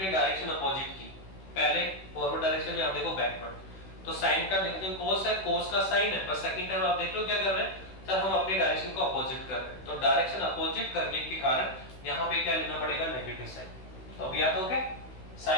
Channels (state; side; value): late; right; 16 ms